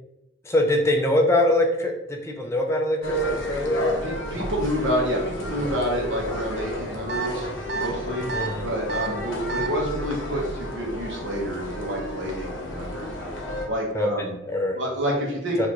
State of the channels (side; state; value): both; normal; correlation 0.35